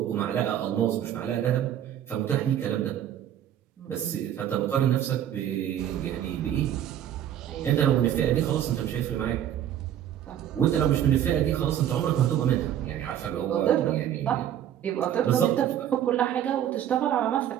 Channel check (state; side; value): quieter; left; 10.7 dB